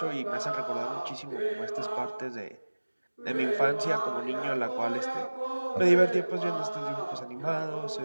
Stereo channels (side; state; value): both; inverted; correlation -1.00